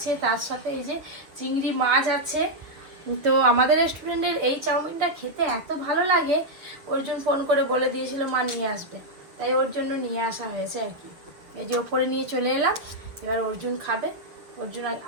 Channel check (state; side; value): late; left; 6.5 ms